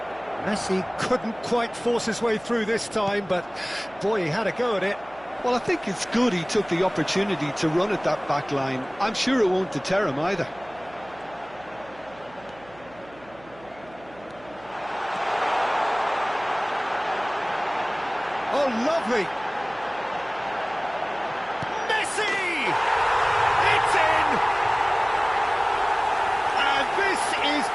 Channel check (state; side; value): noise; right; hum, 23 dB below the sound